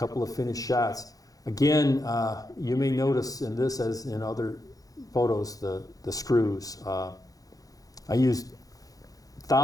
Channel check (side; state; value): right; late; 0.17 ms